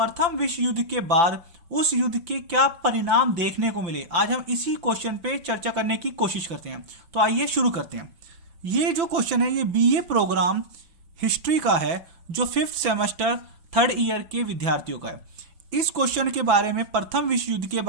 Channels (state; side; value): late; left; 5.9 ms